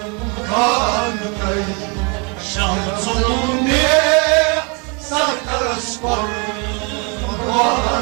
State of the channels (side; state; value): left; quieter; 32.7 dB